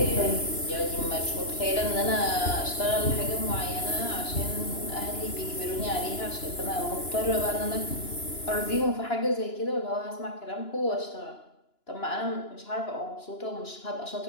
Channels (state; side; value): late; right; 2.9 ms